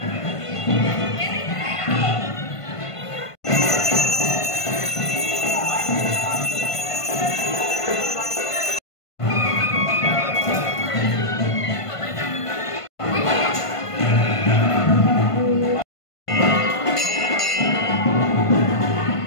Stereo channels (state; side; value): late; right; 1.5 ms